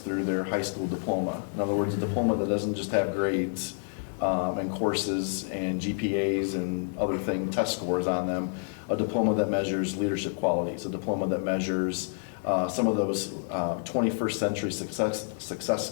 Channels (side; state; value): right; silent; digital silence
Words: their high school diploma. In other words, a diploma that doesn't just have grades and courses and GPAs and other test scores on them, a diploma that measures leadership qualities, a diploma that measures some of those 21st century success